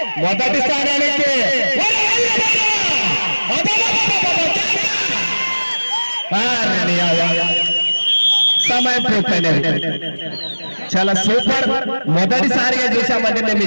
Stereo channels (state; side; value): inverted; both; correlation -1.00